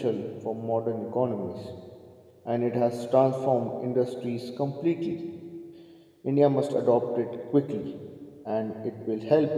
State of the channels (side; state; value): both; identical; correlation 1.00